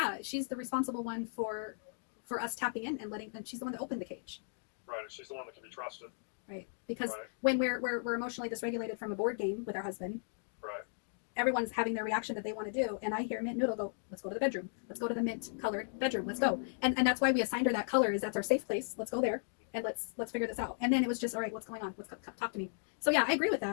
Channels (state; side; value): silent; right; digital silence